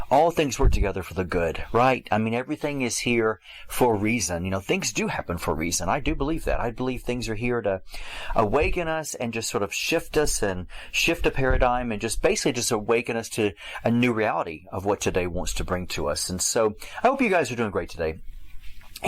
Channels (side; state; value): both; identical; correlation 1.00